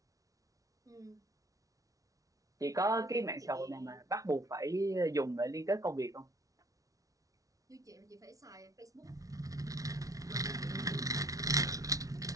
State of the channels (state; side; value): late; left; 0.17 ms